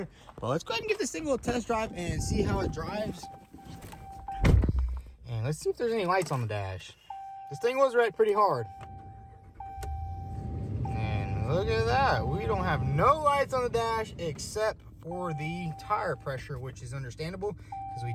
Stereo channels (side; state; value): both; identical; correlation 1.00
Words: But let's go ahead and give this thing a little test drive and see how it drives. And let's see if there's any lights on the dash. This thing was red pretty hard. And look at that. We don't have no lights on the dash except for the tire pressure, which is understandable because we